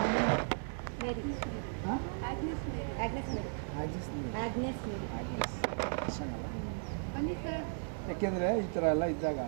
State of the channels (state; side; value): silent; left; digital silence